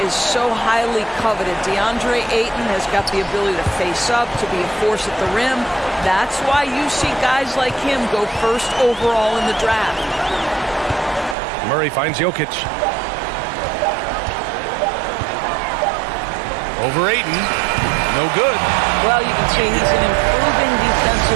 is so highly coveted. DeAndre Ayton has got the ability to face up, to be a force at the rim. That's why you see guys like him go first overall in the draft. Murray finds Jokic. Over Ayton. No good. Well, you can see he's an improving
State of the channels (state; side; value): drops out; left; at 11.4 s